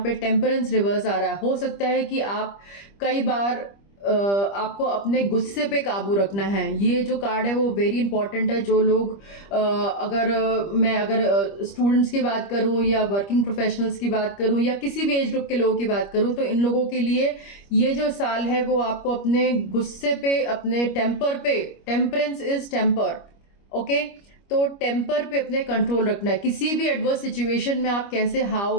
पे टेम्परेंस रिवर्स आ रहा है। हो सकता है कि आप कई बार आपको अपने गुस्से पे काबू रखना है। ये जो कार्ड है वो वेरी इंपॉर्टेंट है। जो लोग अगर स्टूडेंट्स की बात करूं या वर्किंग प्रोफेशनल्स की बात करूं या किसी भी एज ग्रुप के लोगों की बात करूं तो इन लोगों के लिए ये जो साल है वो आपको अपने गुस्से पे, अपने टेम्पर पे, टेम्परेंस इज टेम्पर, ओके, तो टेम्पर पे अपने कंट्रोल रखना है। किसी भी एडवर्स सिचुएशन में आप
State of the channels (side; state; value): right; late; 25 ms